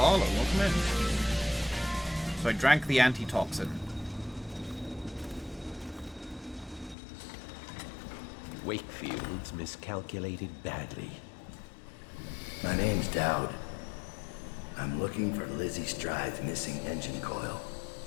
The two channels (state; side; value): drops out; right; at 7.0 s